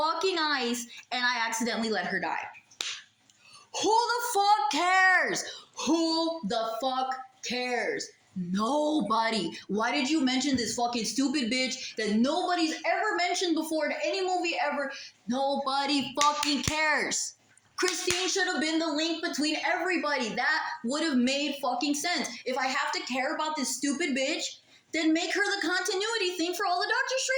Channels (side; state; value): both; identical; correlation 1.00